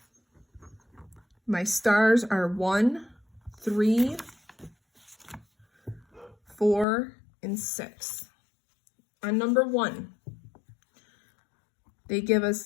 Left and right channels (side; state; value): right; drops out; at 6.9 s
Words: My stars are 1, 3, 4, and 6. On number 1, they give us